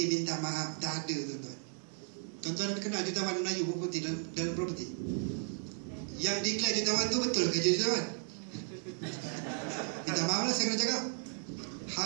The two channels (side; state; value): left; silent; 55 dB below the other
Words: minta maaf, tak ada, tuan-tuan. Tuan-tuan kenal jutawan Melayu property dalam property? Yang declare jutawan tu betul ke jutawan? Minta maaf lah saya kena cakap.